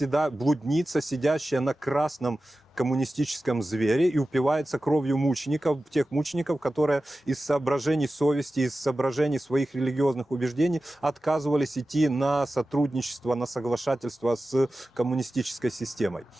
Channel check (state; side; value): normal; both; correlation 0.95